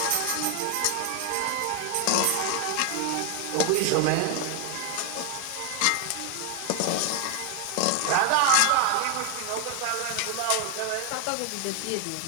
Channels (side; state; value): both; different; correlation 0.01